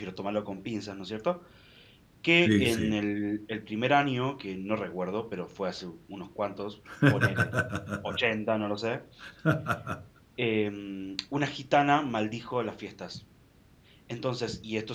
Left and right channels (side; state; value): both; identical; correlation 1.00